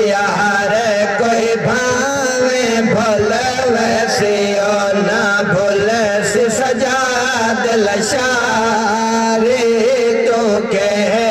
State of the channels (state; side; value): identical; both; correlation 1.00